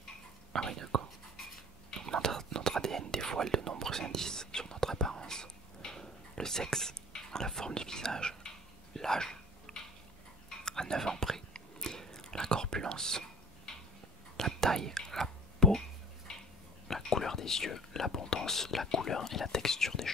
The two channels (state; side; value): normal; both; correlation 0.44